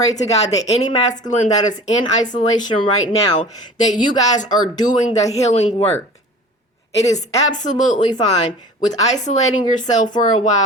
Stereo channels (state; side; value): normal; both; correlation 0.41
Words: to God that any masculine that is in isolation right now, that you guys are doing the healing work. It is absolutely fine with isolating yourself for a